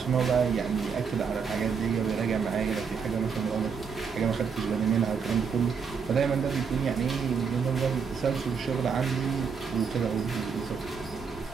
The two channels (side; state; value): left; quieter; 6.1 dB